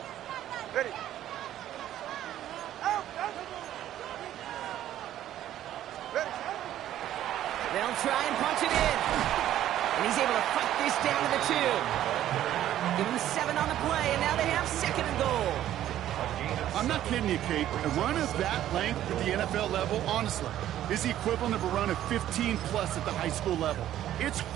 Ready. They'll try and punch it in. And he's able to fight this down to the 2. Give him 7 on the play, and now they have 2nd and goal. I'm not kidding you, Kate. A run of that length at the NFL level, honestly, is the equivalent of a run of 15-plus at the high school level. It's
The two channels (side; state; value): left; quieter; 12.3 dB